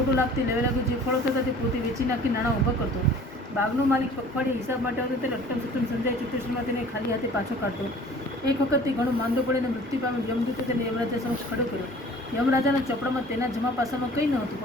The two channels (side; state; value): both; normal; correlation 0.48